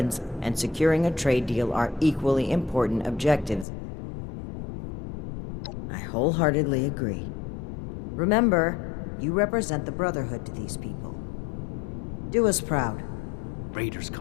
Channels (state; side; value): drops out; right; at 3.7 s